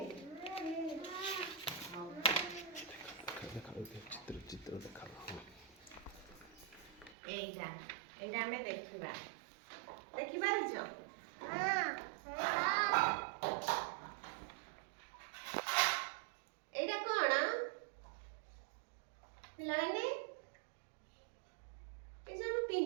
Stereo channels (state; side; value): drops out; left; at 7.2 s